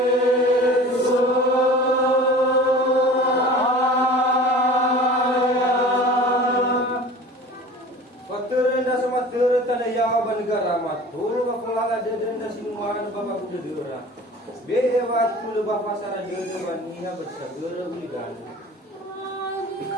Negara matul bakulala deden da sinuan bapa kuda dera be wat kula bapa sara dede baniha bersagera uligan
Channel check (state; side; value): normal; both; correlation 0.41